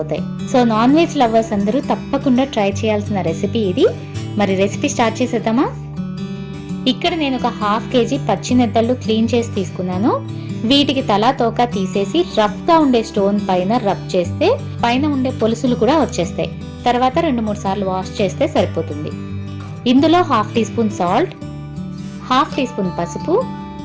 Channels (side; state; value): both; identical; correlation 1.00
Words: సో నాన్ వెజ్ లవర్స్ అందరూ తప్పకుండా ట్రై చేయాల్సిన రెసిపీ ఇది. మరి రెసిపీ స్టార్ట్ చేసేద్దామా? ఇక్కడ నేను ఒక 1/2 kg పచ్చి నెత్తళ్ళు క్లీన్ చేసి తీసుకున్నాను. వీటికి తలా తోక తీసేసి రఫ్ గా ఉండే స్టోన్ పైన రబ్ చేస్తే పైన ఉండే పొలుసులు కూడా వచ్చేస్తాయి. తర్వాత 2-3 సార్లు వాష్ చేస్తే సరిపోతుంది. ఇందులో 1/2 teaspoon salt, 1/2 teaspoon పసుపు,